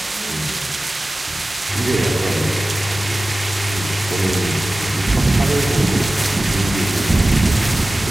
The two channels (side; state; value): both; normal; correlation 0.97